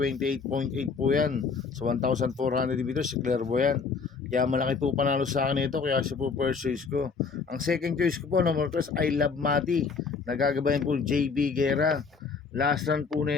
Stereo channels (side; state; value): right; quieter; 5.1 dB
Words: po yan sa 1,400 meters si Clairvoyant. Kaya malaki po panalo sa akin ito, kaya siya po first choice ko. Ang second choice ko po, number 3, I Love Mati. Nagagabayan po JB Guerra. Last run po